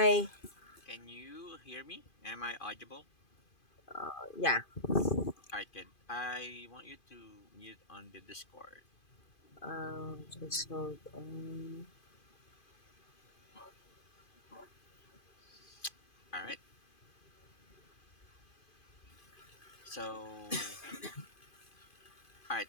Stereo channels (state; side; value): late; right; 2.5 ms